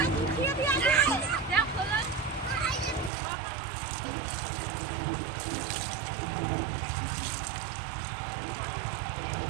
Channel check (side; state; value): left; drops out; at 3.1 s